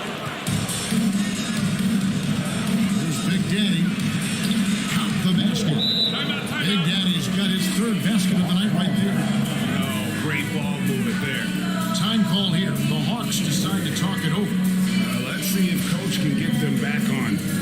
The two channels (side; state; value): both; identical; correlation 1.00